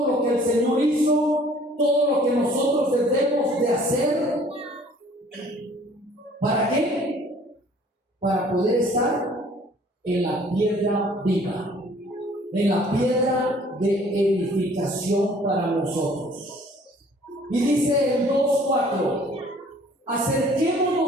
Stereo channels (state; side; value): normal; both; correlation 0.55